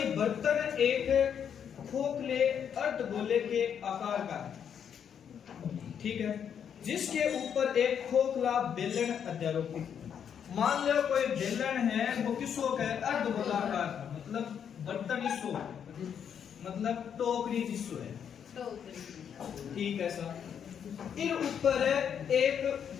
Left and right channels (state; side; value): quieter; right; 8.1 dB